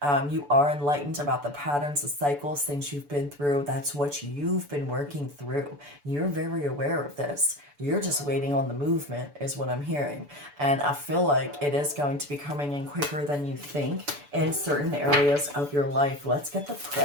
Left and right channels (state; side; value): late; left; 6.9 ms